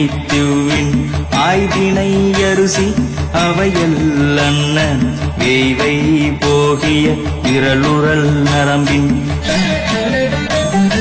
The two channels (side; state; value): both; identical; correlation 1.00